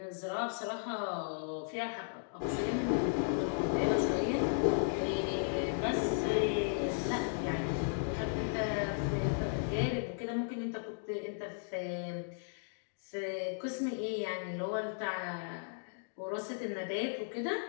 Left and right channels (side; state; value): right; silent; digital silence